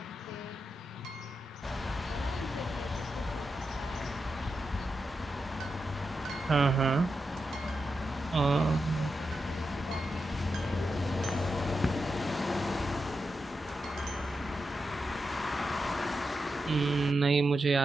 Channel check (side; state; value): both; normal; correlation 0.87